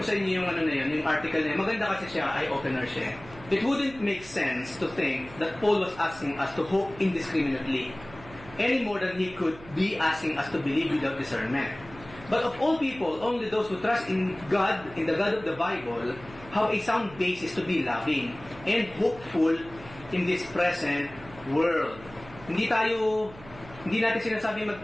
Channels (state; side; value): noise; right; hum, 18 dB below the sound